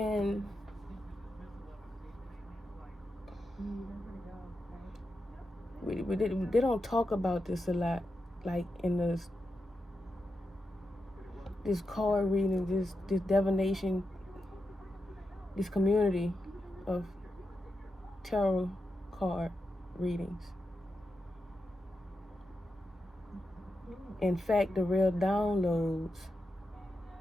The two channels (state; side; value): normal; both; correlation 0.88